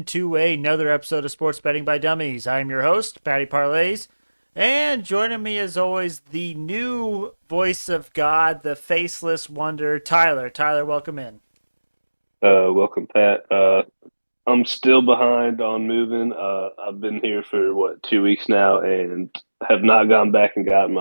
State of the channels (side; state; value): both; inverted; correlation -1.00